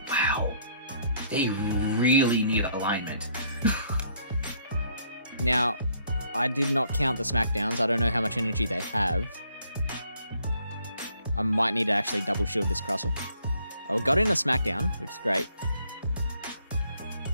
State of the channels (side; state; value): both; inverted; correlation -0.66